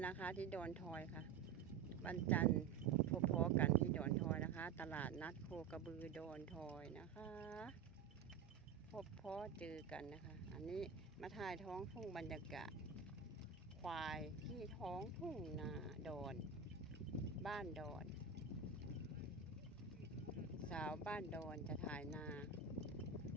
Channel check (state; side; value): quieter; left; 6.5 dB